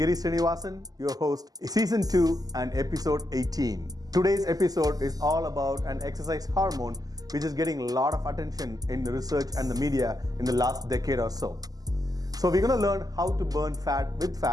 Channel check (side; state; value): left; late; 0.18 ms